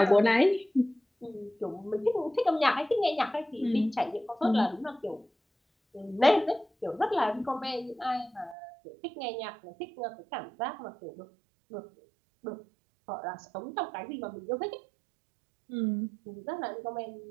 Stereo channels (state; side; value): drops out; left; at 8.6 s